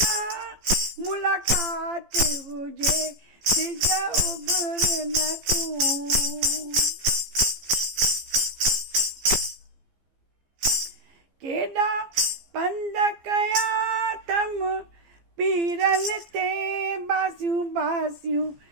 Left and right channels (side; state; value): left; late; 15 ms